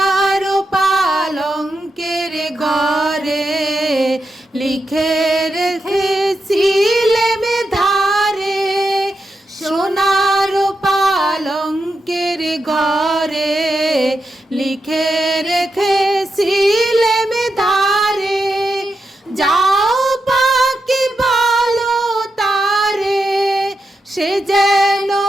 পালঙ্কের ঘরে লিখে রেখেছিলেম ধারে, সোনার পালঙ্কের ঘরে লিখে রেখেছিলেম ধারে। যাও পাখি বলো তারে, সে যেন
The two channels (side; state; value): both; normal; correlation 0.87